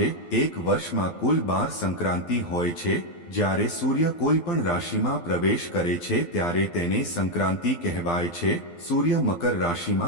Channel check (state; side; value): late; right; 12 ms